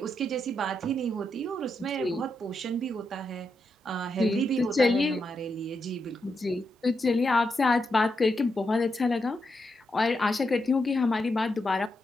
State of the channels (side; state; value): both; normal; correlation 0.84